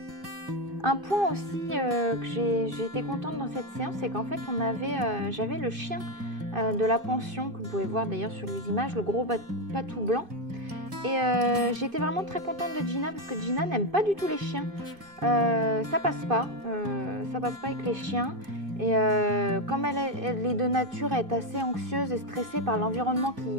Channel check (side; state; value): left; late; 2.5 ms